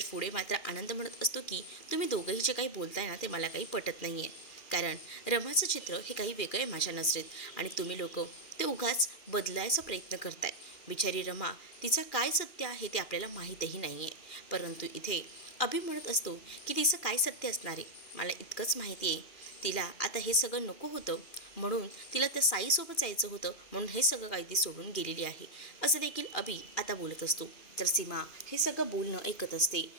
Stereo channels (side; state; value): right; late; 2.4 ms